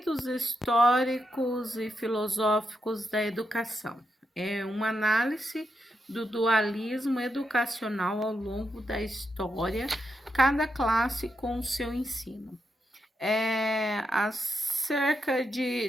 históricos e filosóficos da educação. É uma análise do dualismo educacional ao longo da história, cada classe com o seu ensino. Há cerca de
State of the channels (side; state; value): both; normal; correlation 0.84